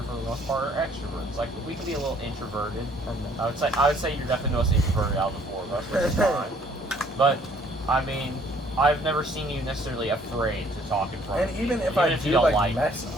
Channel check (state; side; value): normal; both; correlation 0.61